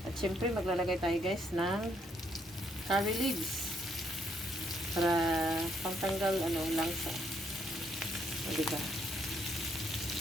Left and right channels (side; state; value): both; normal; correlation 0.72